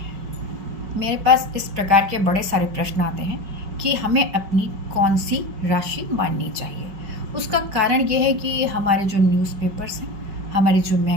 मेरे पास इस प्रकार के बड़े सारे प्रश्न आते हैं कि हमें अपनी कौन सी राशि माननी चाहिए। उसका कारण ये है कि हमारे जो न्यूज़पेपर्स हैं, हमारी जो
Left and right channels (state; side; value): late; left; 4.9 ms